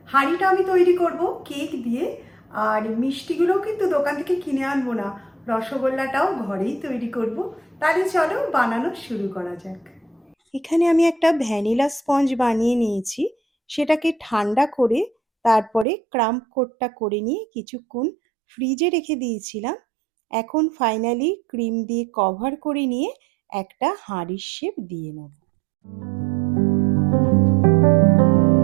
হাঁড়িটা আমি তৈরি করব কেক দিয়ে, আর মিষ্টিগুলোও কিন্তু দোকান থেকে কিনে আনবো না, রসগোল্লাটাও ঘরেই তৈরি করব। তাহলে চলো বানানো শুরু করা যাক। এখানে আমি একটা ভ্যানিলা স্পঞ্জ বানিয়ে নিয়েছি, সেটাকে ঠান্ডা করে তারপরে ক্রাম্প কোটটা করে নিয়ে কিছুক্ষণ ফ্রিজে রেখে দিয়েছিলাম। এখন ফাইনালি ক্রিম দিয়ে কভার করে নিয়ে একটা হাঁড়ির শেপ দিয়ে নেব।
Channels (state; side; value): drops out; left; at 15.9 s